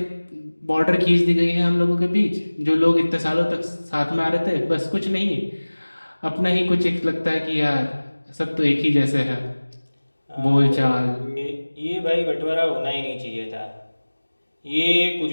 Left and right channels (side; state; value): both; inverted; correlation -1.00